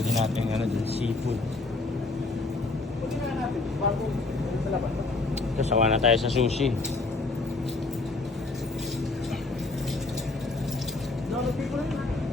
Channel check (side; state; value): right; quieter; 3.4 dB